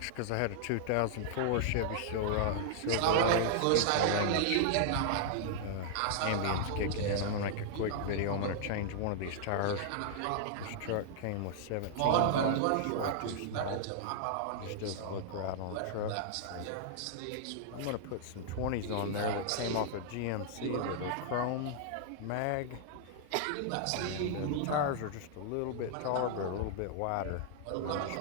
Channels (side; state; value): both; different; correlation -0.01